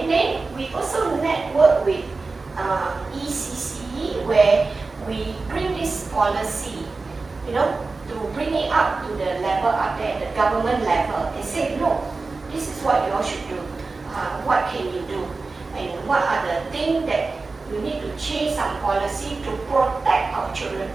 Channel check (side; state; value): left; quieter; 3.9 dB